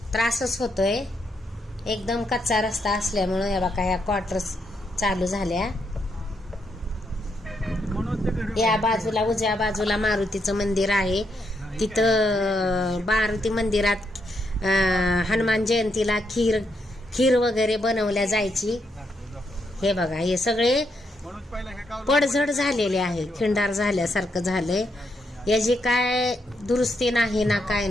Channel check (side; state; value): both; normal; correlation 0.79